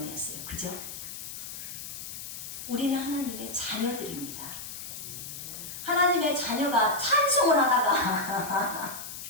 그죠? 우리는 하나님의 자녀들입니다. 하나님의 자녀가 찬송을 하다가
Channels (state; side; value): noise; left; hiss, 9 dB below the sound